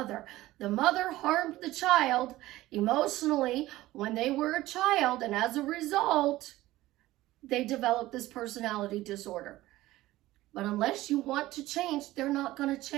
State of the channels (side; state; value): left; quieter; 16.7 dB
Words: The mother harmed the child emotionally when they were a child, and as a result, they developed this personality disorder. But unless you want to change, they're not going to